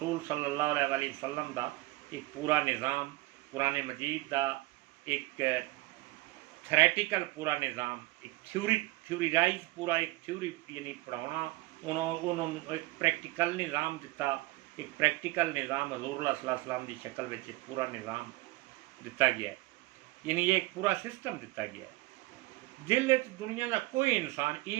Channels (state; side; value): quieter; left; 20.2 dB